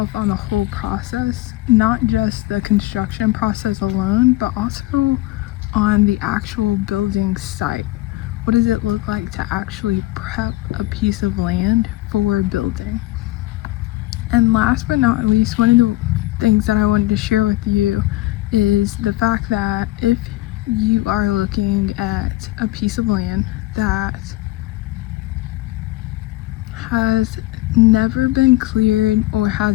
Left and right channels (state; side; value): quieter; right; 17.9 dB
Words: on the whole process, not just the construction process alone, but also on the actual building site. What does it look like to actually prep a piece of land for building? And last but not least, one of the things that I wanted to share with you is the fact that if you are looking at a piece of land that has never been cleared or